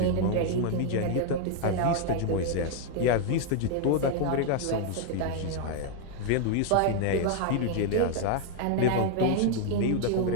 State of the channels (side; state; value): both; different; correlation 0.00